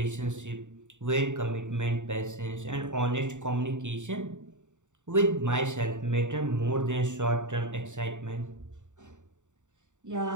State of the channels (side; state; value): left; late; 0.85 ms